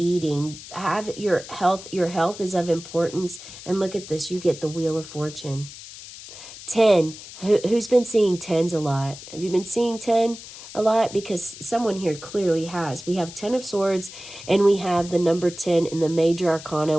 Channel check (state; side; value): noise; left; hiss, 15 dB below the sound